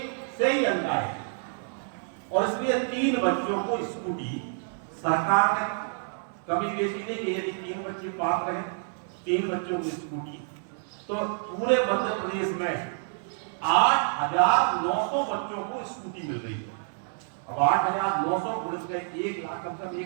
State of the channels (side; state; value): left; silent; 59 dB below the other